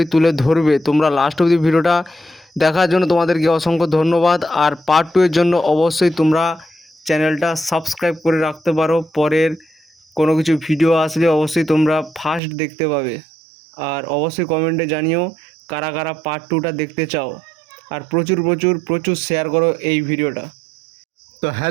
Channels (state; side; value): drops out; left; at 12.4 s